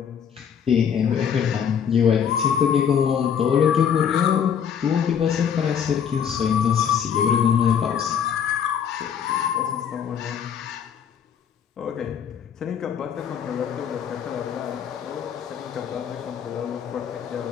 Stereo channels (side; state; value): right; quieter; 8.0 dB